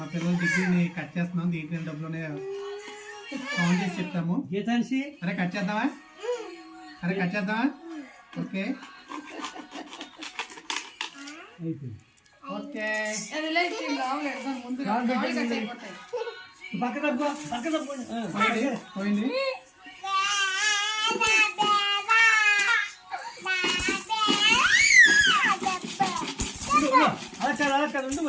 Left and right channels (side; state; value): both; identical; correlation 1.00